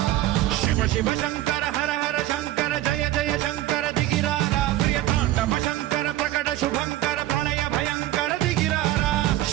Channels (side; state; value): left; quieter; 14.8 dB